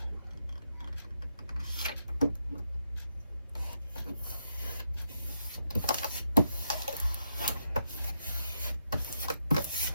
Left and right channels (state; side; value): inverted; both; correlation -0.81